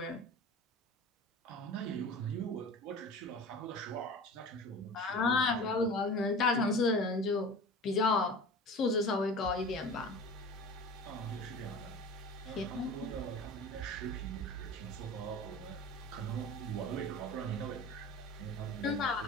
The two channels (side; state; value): both; normal; correlation 0.36